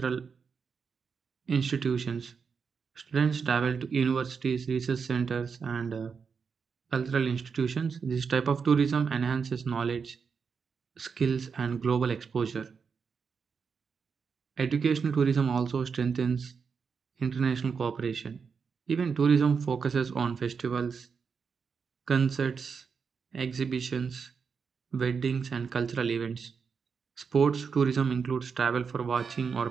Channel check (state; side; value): quieter; left; 5.8 dB